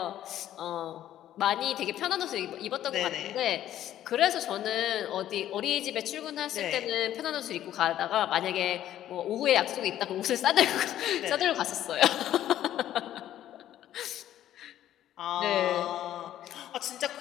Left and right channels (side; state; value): right; quieter; 12.1 dB